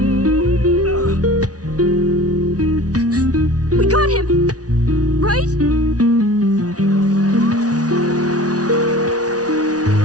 We got him, right?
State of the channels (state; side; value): late; left; 0.68 ms